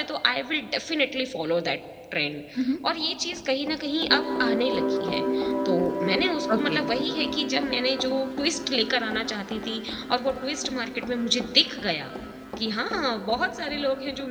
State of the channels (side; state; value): both; identical; correlation 1.00